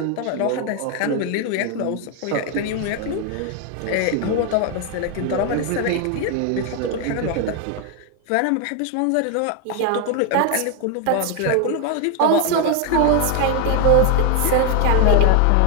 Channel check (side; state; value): both; different; correlation 0.01